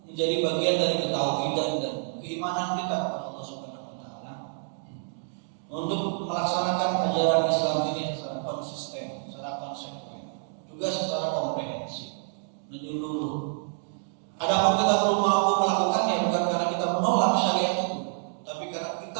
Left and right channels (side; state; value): left; silent; digital silence